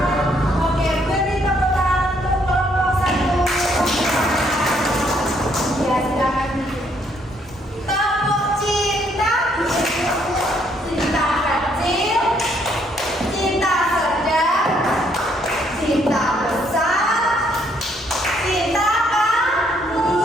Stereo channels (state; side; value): normal; both; correlation 0.69